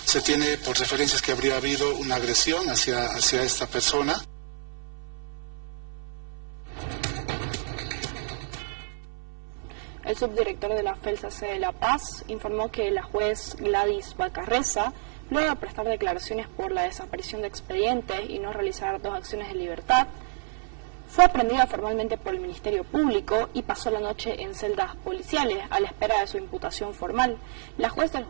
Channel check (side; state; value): left; silent; 57 dB below the other